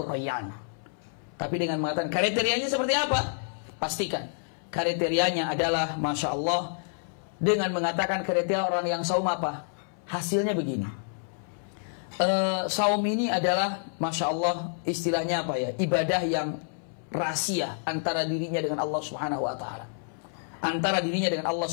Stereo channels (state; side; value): silent; right; 59 dB below the other